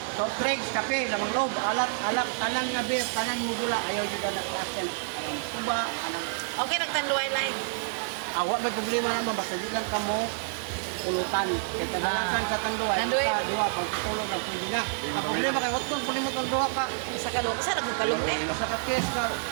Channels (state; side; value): silent; left; digital silence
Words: Soft drinks, kape, lamang loob, alat, tanan nga beer, tanan mo gula, ayaw yun na nagtasin. Anong kuba, anong okay nagtanduay line. awa, may problema naman, basta di lang ka mo ulutan. Kaya kadalasan sa tanduay, Tanduay. sa duwa, pagtutulog ang pwede na. Ang problema kay Hotton, pwede mo tanduwa ka. Sa kalong, sa nagkalong eh. Sa kakis ka,